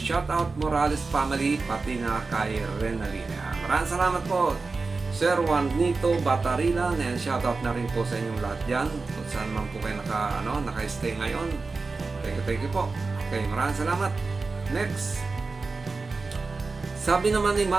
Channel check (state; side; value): quieter; left; 4.0 dB